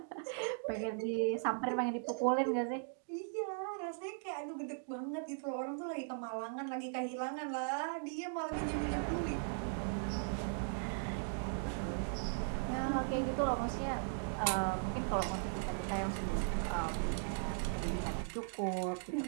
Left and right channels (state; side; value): silent; left; digital silence